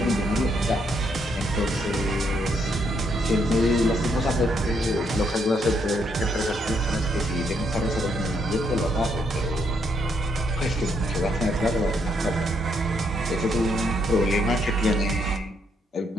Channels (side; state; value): both; normal; correlation 0.74